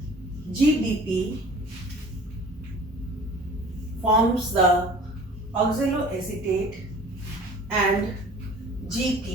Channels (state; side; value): normal; both; correlation 0.46